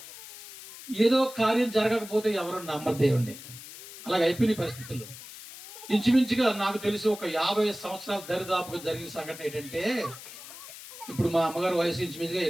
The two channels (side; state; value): left; noise; hiss, 15 dB below the sound